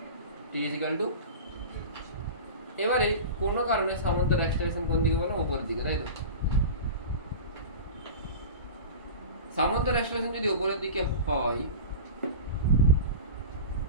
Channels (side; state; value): both; inverted; correlation -0.31